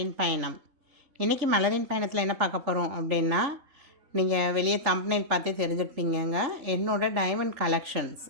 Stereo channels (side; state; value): left; late; 3.4 ms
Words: பயணம். இன்றைக்கி மலரின் பயணத்தில் என்ன பார்க்க போகிறோம் அப்படின்னா, நீங்கள் வெளியே தம்ப்நெயில் பார்த்தே தெரிஞ்சிருப்பீங்கங்க. என்னோடய டைமண்ட் கலெக்ஷன்ஸ்